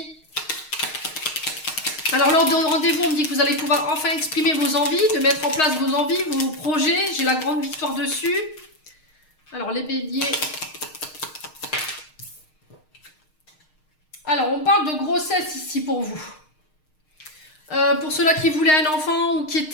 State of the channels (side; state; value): right; late; 6.5 ms